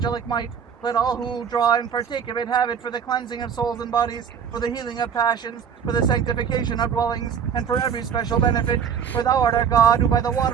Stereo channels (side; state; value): left; quieter; 7.5 dB